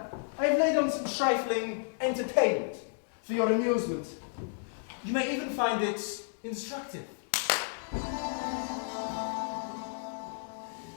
I have laid on some trifling entertainment for your amusement. You may even find it instructive.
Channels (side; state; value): right; silent; digital silence